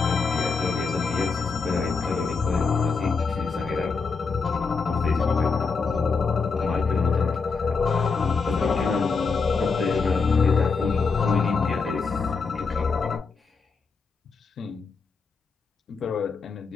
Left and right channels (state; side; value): quieter; right; 4.9 dB